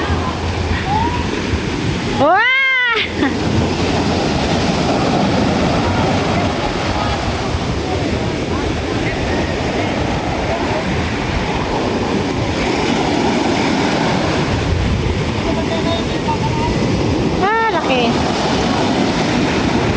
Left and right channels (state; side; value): identical; both; correlation 1.00